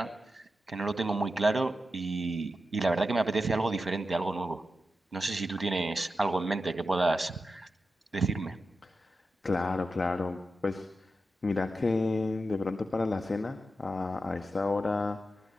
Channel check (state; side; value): normal; both; correlation 0.90